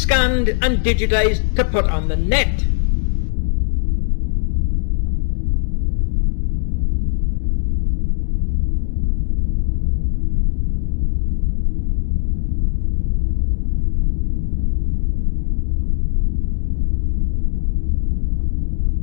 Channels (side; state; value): right; silent; digital silence